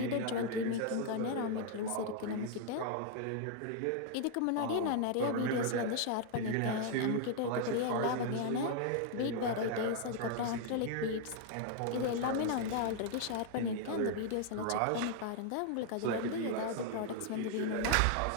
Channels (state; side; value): different; both; correlation 0.00